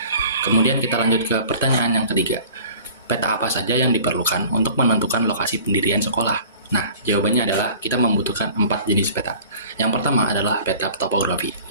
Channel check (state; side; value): inverted; both; correlation -0.46